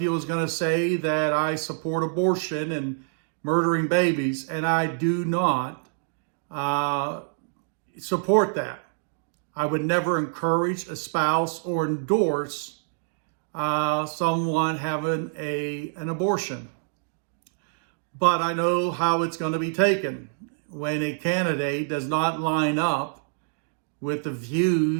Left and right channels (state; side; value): silent; left; digital silence